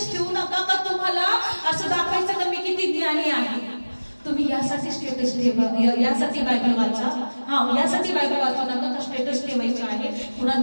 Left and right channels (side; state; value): both; inverted; correlation -1.00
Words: ठेवू नका का तुम्हाला असं दाखवायचं का मी किती ज्ञानी आहे. तुम्ही यासाठी स्टेटस ठेवा, यासाठी बायबल वाचा. यासाठी बायबल वाचू नका का स्टेटस ठेवायचे आहे,